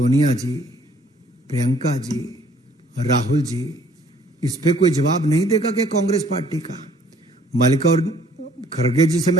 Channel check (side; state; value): both; normal; correlation 0.59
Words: जी, प्रियंका जी, राहुल जी, इस पे कोई जवाब नहीं देगा कि कांग्रेस पार्टी का? मल्लिकार्जुन खड़गे जी से